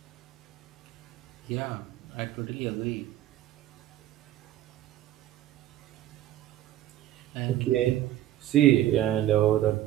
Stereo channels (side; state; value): left; quieter; 13.4 dB